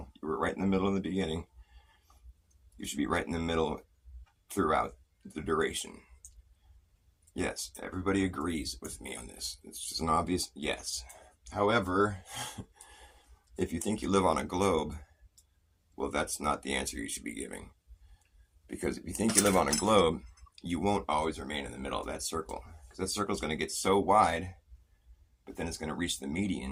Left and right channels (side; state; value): both; identical; correlation 1.00